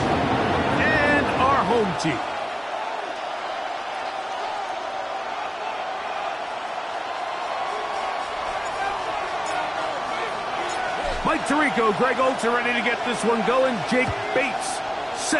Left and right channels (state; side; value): identical; both; correlation 1.00